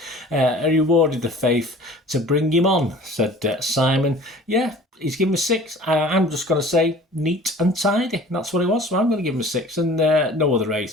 He rewarded the faith to bring him on, said Simon. Yeah, he's given him a 6. I'm just going to say neat and tidy. That's what it was, so I'm going to give him a 6. And no other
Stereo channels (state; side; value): normal; both; correlation 0.45